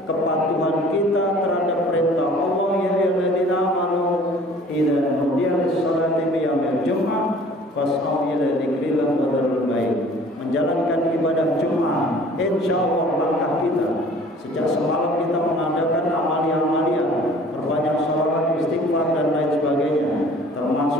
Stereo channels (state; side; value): normal; both; correlation 0.50